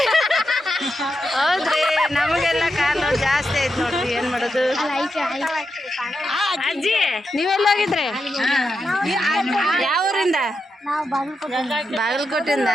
ಹೌದ್ರಿ, ನಮಗೆಲ್ಲ ಕಾಲು ನೋವು ಜಾಸ್ತಿ ಆಯ್ತು ನೋಡ್ರಿ. ಏನ್ ಮಾಡೋದು? ಅಜ್ಜಿ ನೀವೆಲ್ಲ ಹೋಗಿದ್ರಿ? ಯಾವ ಊರಿಂದ? ಬಾಗಲಕೋಟೆಯಿಂದ.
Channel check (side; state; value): both; normal; correlation 0.86